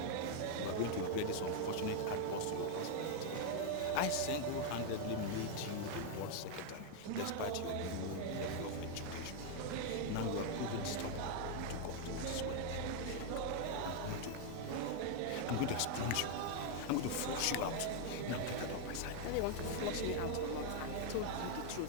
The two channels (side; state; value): both; different; correlation 0.00